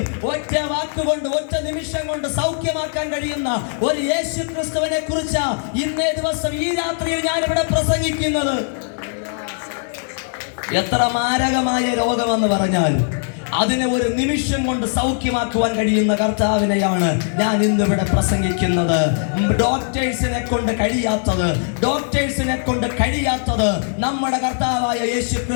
ഒറ്റ വാക്കുകൊണ്ട് ഒറ്റ നിമിഷം കൊണ്ട് സൗഖ്യമാക്കാൻ കഴിയുന്ന ഒരു യേശു ക്രിസ്തുവിനെ കുറിച്ച് ഇന്നേ ദിവസം ഈ രാത്രിയിൽ ഞാൻ ഇവിടെ പ്രസംഗിക്കുന്നത്. എത്ര മാരകമായ രോഗമെന്ന് പറഞ്ഞാൽ അതിനെ ഒരു നിമിഷം കൊണ്ട് സൗഖ്യമാക്കുവാൻ കഴിയുന്ന കർത്താവിനെയാണ് ഞാൻ ഇന്നിവിടെ പ്രസംഗിക്കുന്നത്. ഡോക്ടേഴ്സിനെ കൊണ്ട് കഴിയാത്തത് നമ്മുടെ കർത്താവായ യേശു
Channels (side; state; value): right; silent; digital silence